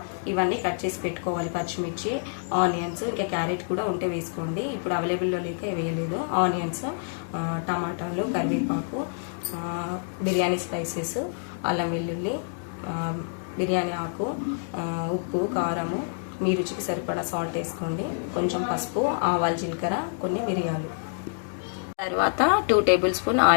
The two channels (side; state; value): right; silent; digital silence